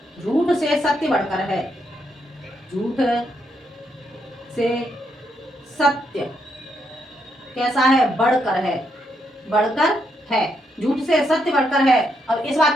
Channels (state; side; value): normal; both; correlation 0.78